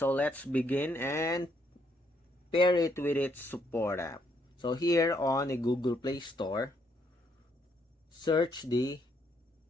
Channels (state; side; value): normal; both; correlation 0.72